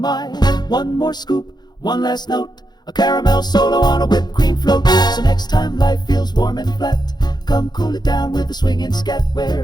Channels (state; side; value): late; right; 0.20 ms